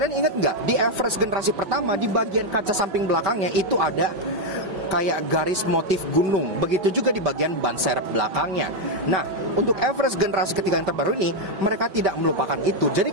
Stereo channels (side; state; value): left; late; 5.2 ms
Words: ingat nggak, di Everest generasi pertama, di bagian kaca samping belakangnya itu ada kayak garis motif gunung. Begitu juga di bagian ban serep belakangnya. Nah, untuk Everest generasi ketiga yang terbaru ini, mereka tidak melupakan itu. Jadi